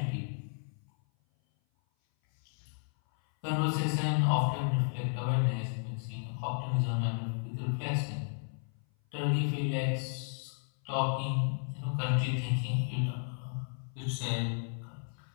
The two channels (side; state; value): right; silent; 55 dB below the other